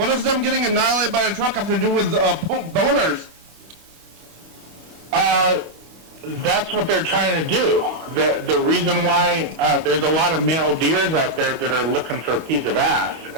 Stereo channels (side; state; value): left; late; 25 ms